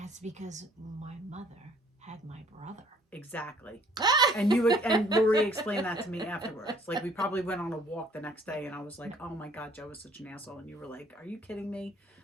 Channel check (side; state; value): both; normal; correlation 0.59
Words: because my mother had my brother. Exactly. And you would, and Lori explained that to me afterwards. Like, we probably went on a walk the next day, and I was like, oh my God, Joe was such an asshole. And you were like, are you kidding me?